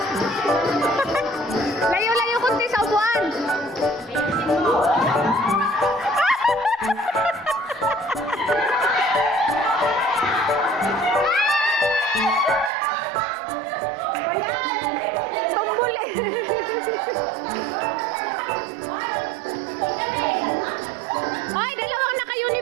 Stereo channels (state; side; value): drops out; left; at 12.7 s